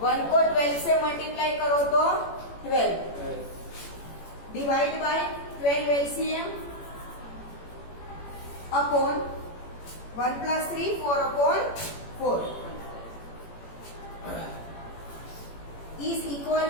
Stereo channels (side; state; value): right; late; 18 ms